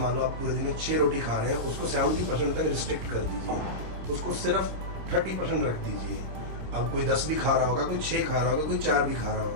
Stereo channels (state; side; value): late; left; 26 ms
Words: लो आप पूरे दिन में 6 रोटी खा रहे हैं, उसको 70% तक रिस्ट्रिक्ट कर दीजिए, उसको सिर्फ 30% रख दीजिए। अब कोई 10 भी खा रहा होगा, कोई 6 खा रहा होगा, कोई 4 भी खा रहा